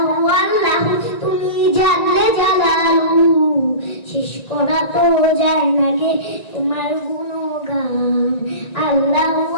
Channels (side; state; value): right; late; 1.9 ms